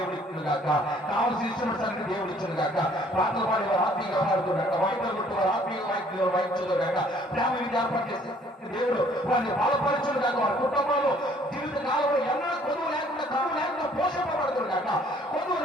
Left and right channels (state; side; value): normal; both; correlation 0.59